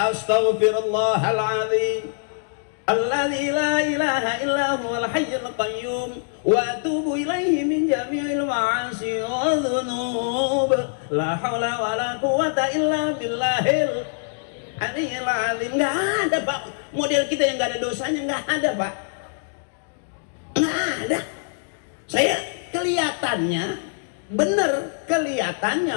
Alladzi la ilaha illa huwal hayyul qayyum wa atubu ilaihi min jami'il ma'asi wa dzunub la haula wala quwata illa billahil aliyyil azim. Enggak ada Pak model kita yang enggak ada dosanya, enggak ada Pak, enggak ada. Saya kelihatannya bener, kelihatannya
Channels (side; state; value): right; silent; digital silence